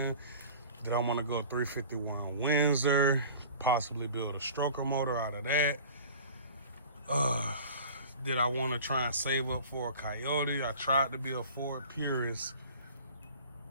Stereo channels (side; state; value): both; inverted; correlation -0.43